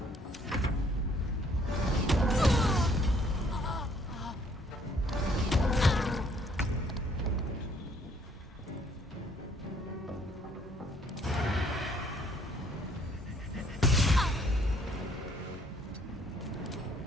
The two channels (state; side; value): normal; both; correlation 0.63